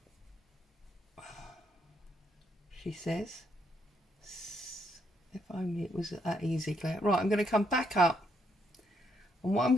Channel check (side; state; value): both; normal; correlation 0.74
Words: she says, if only it was that easy, Claire. Right, I'm going to come back up, and what I'm